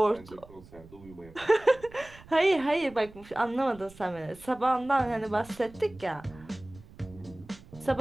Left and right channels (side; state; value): right; noise; rumble, 21 dB below the sound